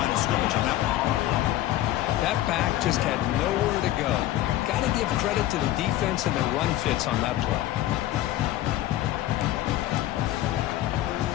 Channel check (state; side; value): quieter; right; 14.4 dB